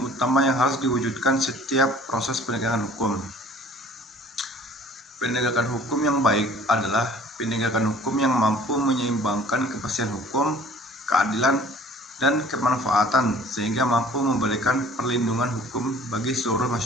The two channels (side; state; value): both; normal; correlation 0.51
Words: utama yang harus diwujudkan setiap proses penegakan hukum. Penegakan hukum yang baik adalah penegakan hukum yang mampu menyeimbangkan kepastian hukum, keadilan, dan kemanfaatan sehingga mampu memberikan perlindungan hukum bagi seluruh